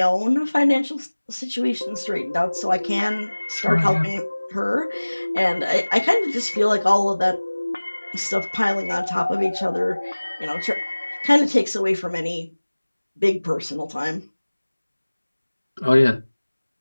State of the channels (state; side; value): inverted; both; correlation -1.00